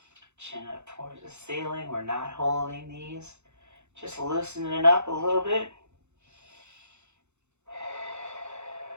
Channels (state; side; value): late; left; 0.82 ms